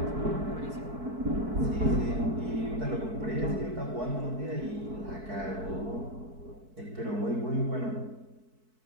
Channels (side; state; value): left; late; 4.6 ms